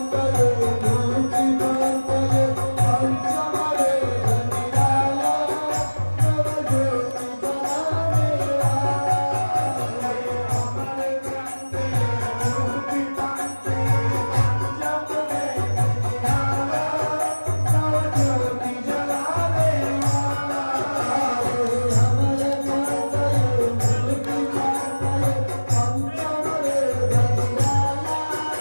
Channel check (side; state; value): both; inverted; correlation -1.00